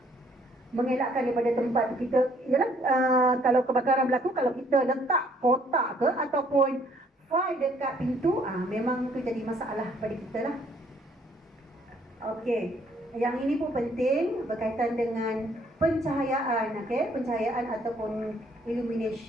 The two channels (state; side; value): normal; both; correlation 0.64